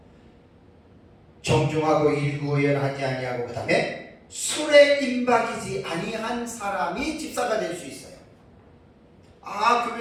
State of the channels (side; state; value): both; identical; correlation 1.00